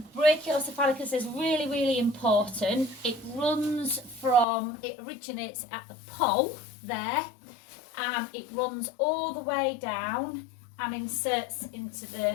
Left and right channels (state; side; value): drops out; right; at 4.5 s